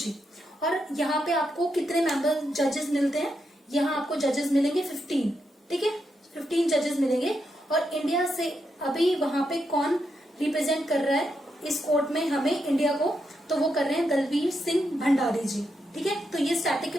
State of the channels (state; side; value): normal; both; correlation 0.83